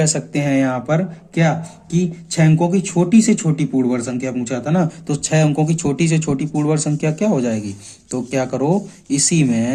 सकते हैं यहाँ पर क्या, कि 6 अंकों की छोटी से छोटी पूर्ण वर्ग संख्या पूछा था ना, तो 6 अंकों की छोटी से छोटी पूर्ण वर्ग संख्या क्या हो जाएगी, तो क्या करो, इसी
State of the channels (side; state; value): both; identical; correlation 1.00